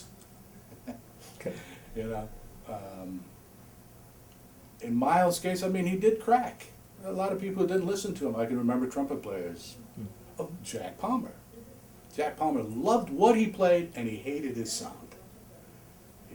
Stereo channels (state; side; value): identical; both; correlation 1.00